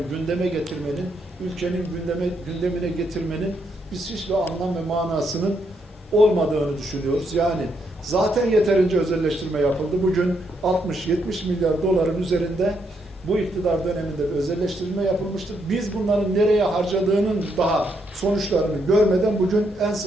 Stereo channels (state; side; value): normal; both; correlation 0.77